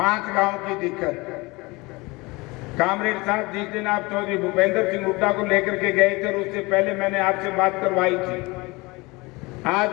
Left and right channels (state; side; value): quieter; right; 24.1 dB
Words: गांव की दिक्कत। कामरेड साहब जिस दिन आप चौधरी भूपेंद्र सिंह हुड्डा को लेकर के गए थे उससे पहले मैंने आपसे बात करवाई थी। आज